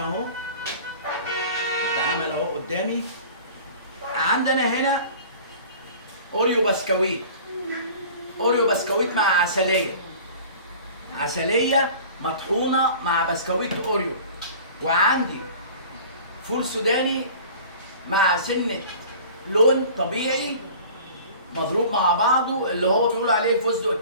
اتعمل اهو قدامي. عندنا هنا اوريو بسكويت، اوريو بسكويت مع عسليه، عسليه مطحونه مع بسكويت اوريو. وعندي فول سوداني مع سنه لون طبيعي مضروب مع بعضه، اللي هو بيقولوا عليه الفستق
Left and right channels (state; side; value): inverted; both; correlation -0.43